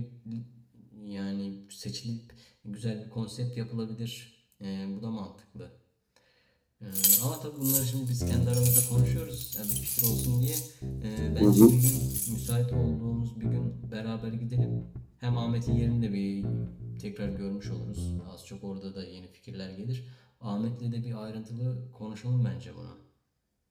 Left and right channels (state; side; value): identical; both; correlation 1.00